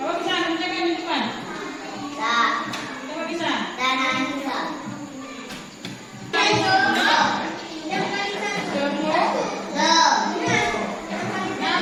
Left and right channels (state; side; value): identical; both; correlation 1.00